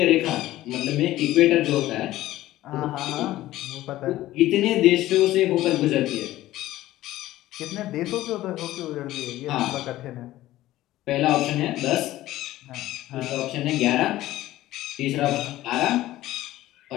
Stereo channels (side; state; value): right; quieter; 15.4 dB